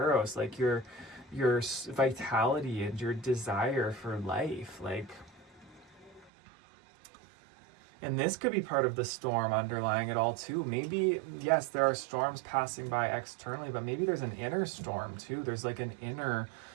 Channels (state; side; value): drops out; left; at 6.3 s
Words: like your vitality and your desire for life. Like, and this could be part of the storm underlying it all too. Maybe, yes, there are storms passing by externally, but maybe there's an inner storm too. There's like an inner